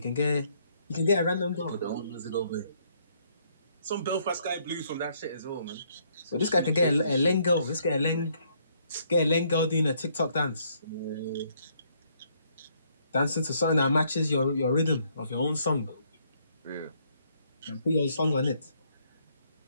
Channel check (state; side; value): inverted; both; correlation -0.69